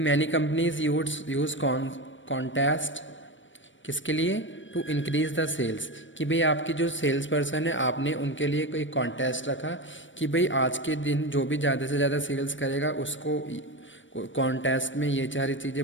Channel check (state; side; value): late; right; 0.56 ms